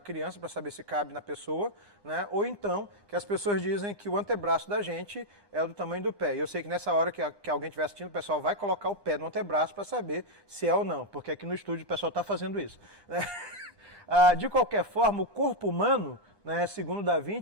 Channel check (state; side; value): late; right; 1.2 ms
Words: para saber se cabe na pessoa, né? Ou então, que as pessoas dizem que o antebraço da gente é do tamanho do pé. E eu sei que nessa hora que alguém estiver assistindo, o pessoal vai colocar o pé no antebraço para saber se é ou não, porque aqui no estúdio o pessoal está fazendo isso, né? De qualquer forma, o corpo humano, né, segundo Da